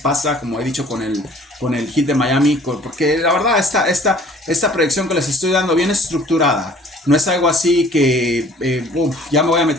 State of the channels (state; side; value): normal; both; correlation 0.53